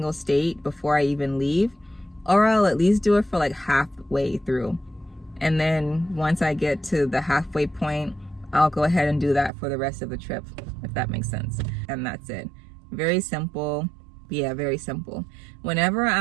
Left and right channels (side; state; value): left; drops out; at 9.5 s